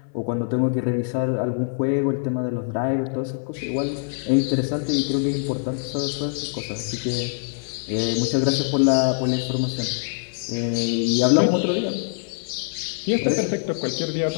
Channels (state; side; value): silent; right; 57 dB below the other